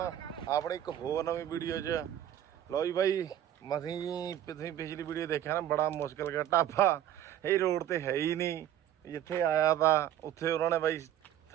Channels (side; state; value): left; quieter; 11.2 dB